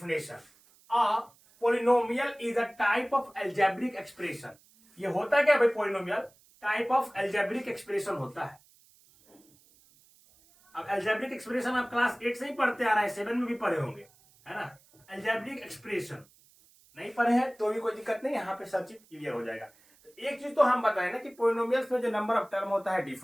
Polynomial is a type of algebraic expression. ये होता है क्या भाई, polynomial type of algebraic expression होता है। अब एल्जेब्रिक एक्सप्रेशन आप क्लास 8 से ही पढ़ते आ रहे हैं, 7 में भी पढ़े होंगे, है ना। एल्जेब्रिक एक्सप्रेशन नहीं पढ़े हैं तो भी कोई दिक्कत नहीं, यहाँ पे सब चीज क्लियर हो जाएगा। तो एक चीज तो हम बताएं ना कि पॉलिनोमियल्स में जो नंबर ऑफ टर्म होता है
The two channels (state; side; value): noise; right; hiss, 29 dB below the sound